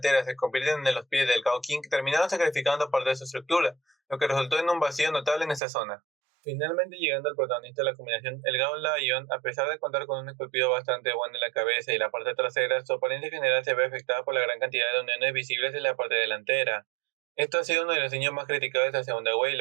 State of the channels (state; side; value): drops out; left; at 5.6 s